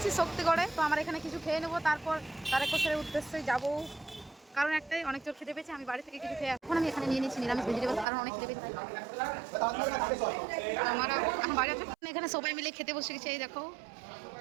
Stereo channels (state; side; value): drops out; left; at 8.1 s